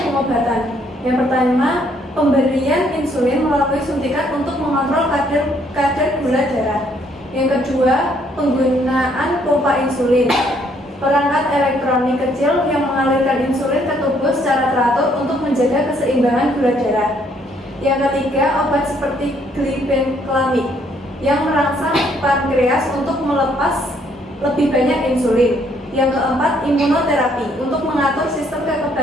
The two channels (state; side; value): normal; both; correlation 0.67